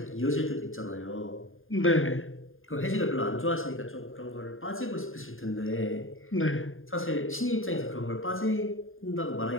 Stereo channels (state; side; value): late; right; 0.59 ms